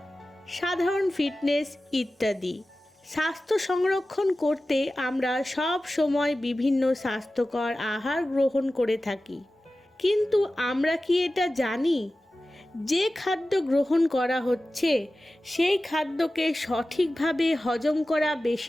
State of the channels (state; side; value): normal; both; correlation 0.95